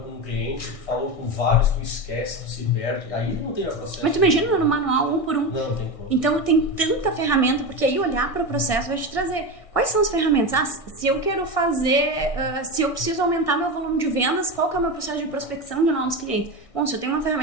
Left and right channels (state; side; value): late; right; 1.6 ms